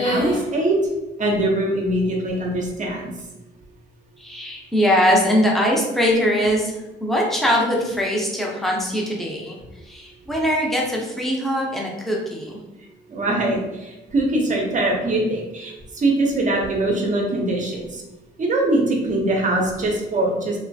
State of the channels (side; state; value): both; normal; correlation 0.54